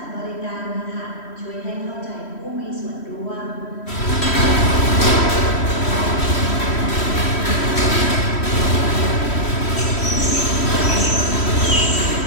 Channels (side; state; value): right; late; 3.1 ms